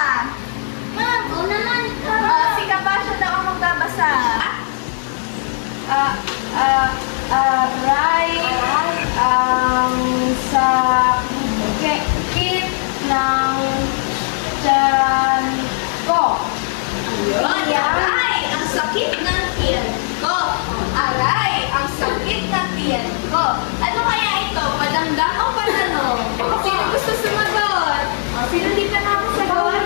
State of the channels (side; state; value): right; silent; 59 dB below the other